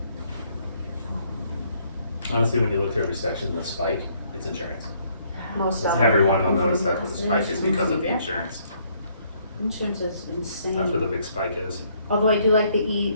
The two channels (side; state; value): both; inverted; correlation -0.68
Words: Honestly, when you look through every section, the spike, it's insurance. Most of Everyone will notice that the spike is because of the insurance. insurance is insane. That's where the big spike is. Although I do like